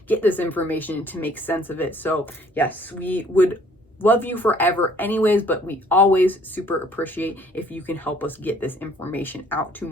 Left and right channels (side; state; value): both; normal; correlation 0.59